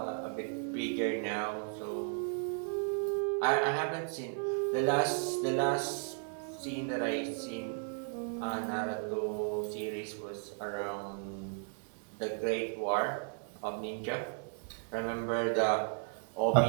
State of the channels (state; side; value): silent; left; 55 dB below the other